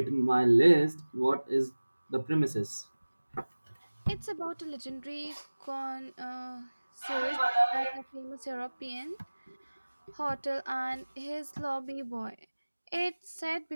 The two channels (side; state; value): both; inverted; correlation -1.00